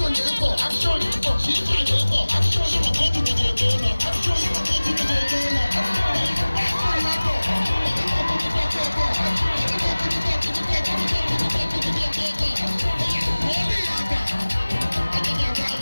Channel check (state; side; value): inverted; both; correlation -1.00